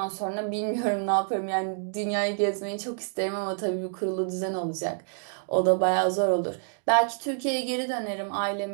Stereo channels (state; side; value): silent; left; digital silence